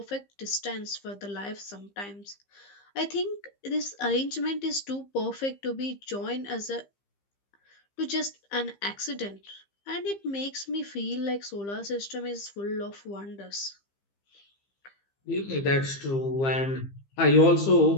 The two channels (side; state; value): right; late; 15 ms